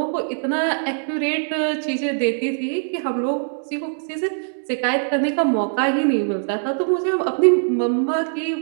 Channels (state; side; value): silent; left; digital silence